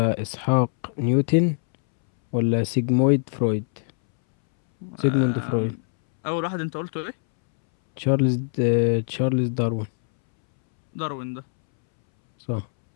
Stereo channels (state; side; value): silent; right; 63 dB below the other